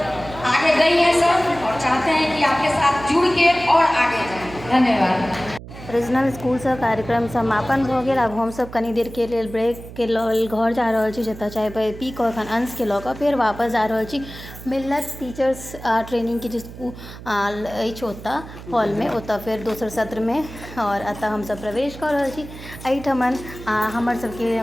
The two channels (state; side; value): noise; right; hum, 14 dB below the sound